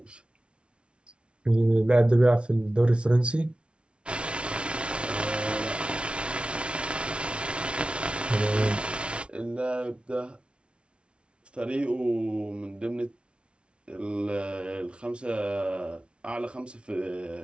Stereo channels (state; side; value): late; left; 0.058 ms